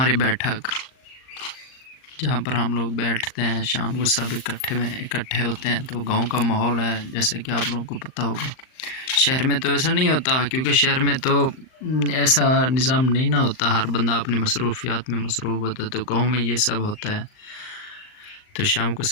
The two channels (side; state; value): right; late; 39 ms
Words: बैठक, जहाँ पर हम लोग बैठते हैं शाम को, सब इकट्ठे होते हैं। तो गांव का माहौल है, जैसे कि आप लोगों को पता होगा। शहर में तो ऐसा नहीं होता, क्योंकि शहर में तो ऐसा निज़ाम नहीं ना होता, हर बंदा अपनी मसरूफियात में मसरूफ़ होता है। तो गांव में ये सब होता है। तो शाम को